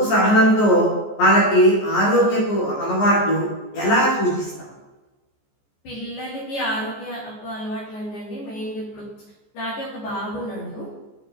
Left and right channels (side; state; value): right; late; 14 ms